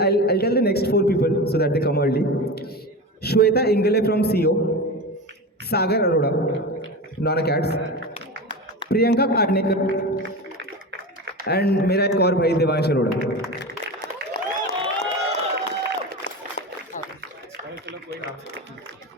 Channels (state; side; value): normal; both; correlation 0.26